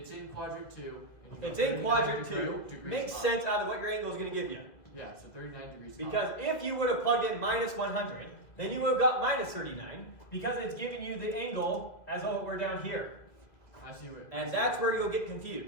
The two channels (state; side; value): late; right; 2.2 ms